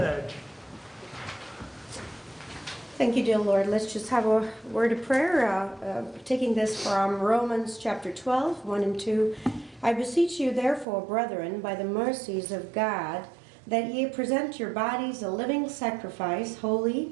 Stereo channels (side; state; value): left; drops out; at 10.9 s